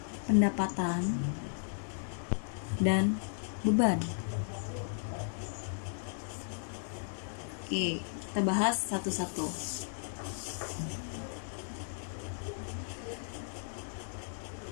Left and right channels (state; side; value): silent; right; digital silence